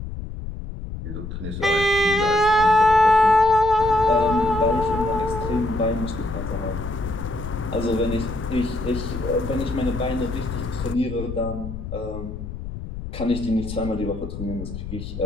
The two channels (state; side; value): noise; left; rumble, 8 dB below the sound